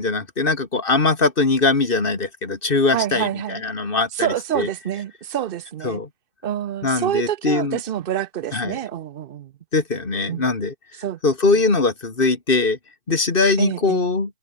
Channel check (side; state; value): right; late; 2.6 ms